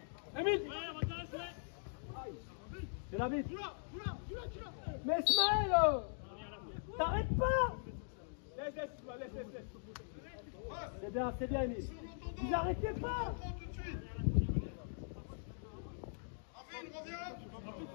Émile. C'est la bite. Mais Smaël, t'arrêtes pas. Laisse. C'est bien, Émile. Vous arrêtez pas.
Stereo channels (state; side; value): silent; right; digital silence